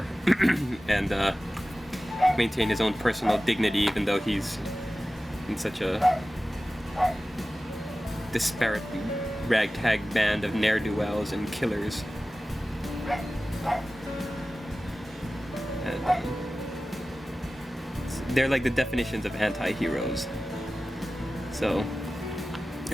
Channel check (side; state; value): both; normal; correlation 0.96